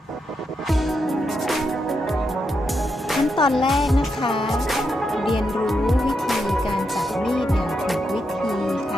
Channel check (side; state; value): both; normal; correlation 0.83